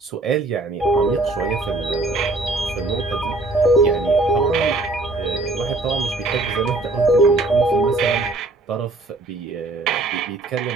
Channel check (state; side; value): quieter; left; 3.1 dB